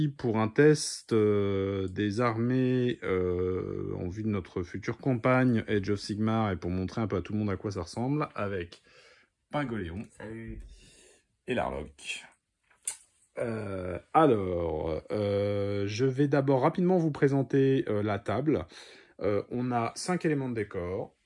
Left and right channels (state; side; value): identical; both; correlation 1.00